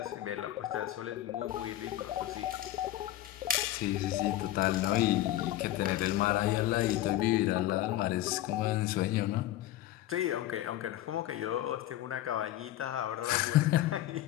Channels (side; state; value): right; quieter; 14.1 dB